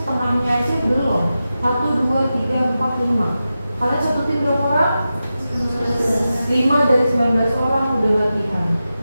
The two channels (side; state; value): both; inverted; correlation -0.92